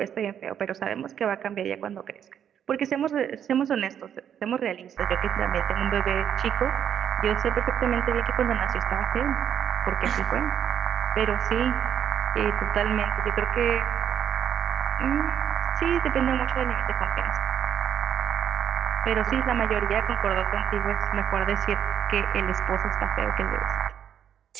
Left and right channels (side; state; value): left; quieter; 9.1 dB